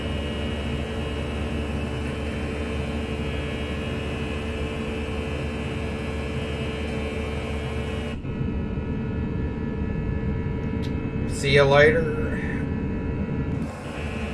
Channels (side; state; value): both; identical; correlation 1.00